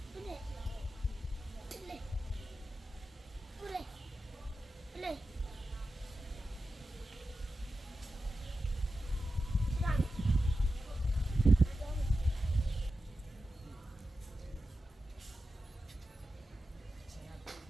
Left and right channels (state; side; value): normal; both; correlation 0.91